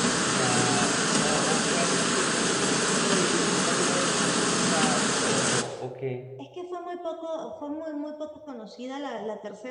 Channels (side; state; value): both; identical; correlation 1.00